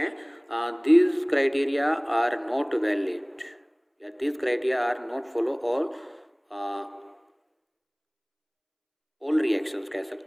this criteria are not valid या this criteria are not follow all reactions कह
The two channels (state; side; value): identical; both; correlation 1.00